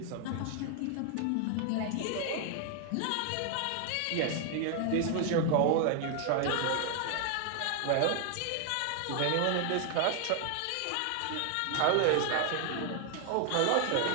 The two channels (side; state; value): both; different; correlation 0.00